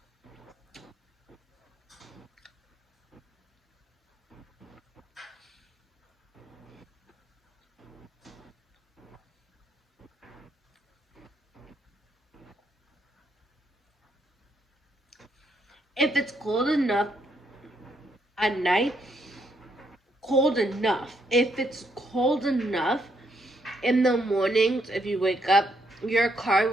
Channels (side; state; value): both; normal; correlation 0.74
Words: If it's cold enough at night, cold enough. If it's cold enough in the mornings, if you wake up, your car